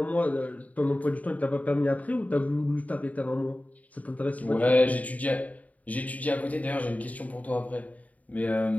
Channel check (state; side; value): late; right; 0.071 ms